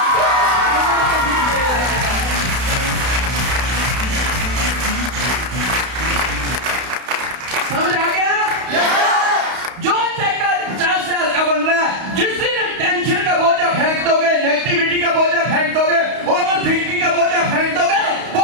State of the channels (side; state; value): left; late; 32 ms